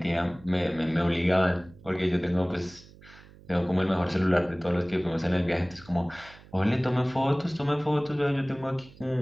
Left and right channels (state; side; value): noise; right; hum, 22 dB below the sound